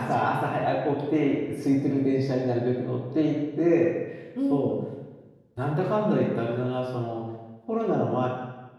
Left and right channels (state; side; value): identical; both; correlation 1.00